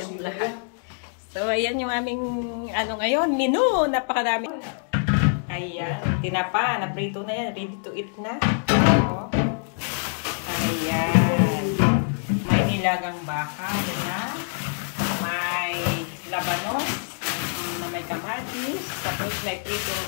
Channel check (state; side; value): silent; right; digital silence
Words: lahat? So ayan yung aming ngayon, menu, napakarami. Ayan, tinapa, naprito na yan, ready to eat na. So, ayan, may nilagang baka, yan na. May labanos na may kamatis, tapos may